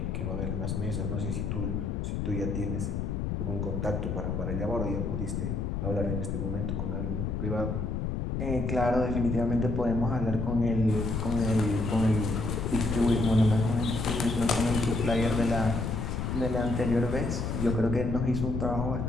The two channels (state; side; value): noise; left; rumble, 1 dB below the sound